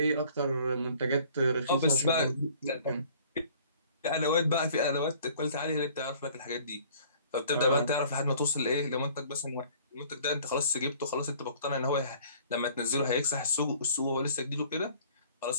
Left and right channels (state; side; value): inverted; both; correlation -0.53